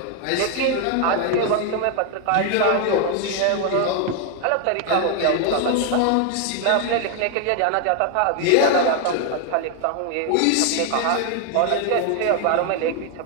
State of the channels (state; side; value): different; both; correlation 0.01